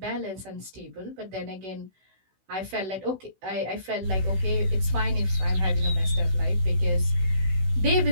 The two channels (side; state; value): left; late; 16 ms